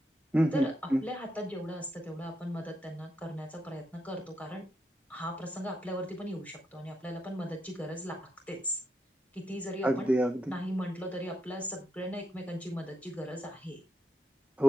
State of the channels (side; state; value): both; normal; correlation 0.82